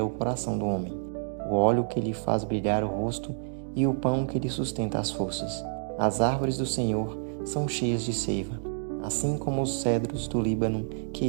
o coração do homem, o óleo que lhe faz brilhar o rosto e o pão que lhe sustenta as forças. As árvores do Senhor são cheias de seiva, assim como os cedros do Líbano que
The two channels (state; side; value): silent; left; digital silence